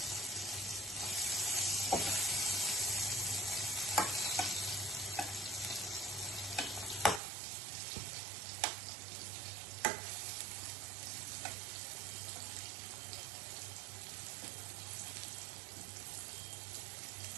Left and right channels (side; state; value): left; drops out; at 7.2 s